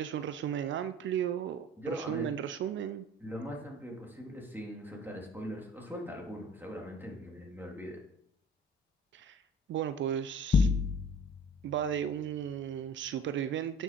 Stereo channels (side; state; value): both; normal; correlation 0.45